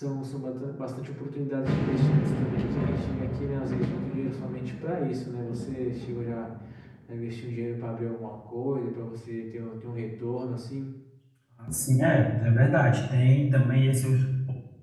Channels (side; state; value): both; identical; correlation 1.00